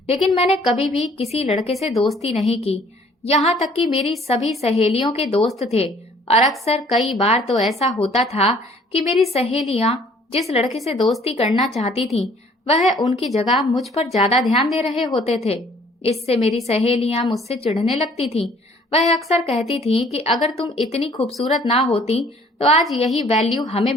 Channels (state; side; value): normal; both; correlation 0.57